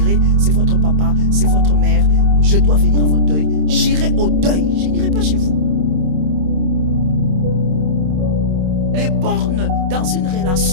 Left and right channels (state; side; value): late; left; 27 ms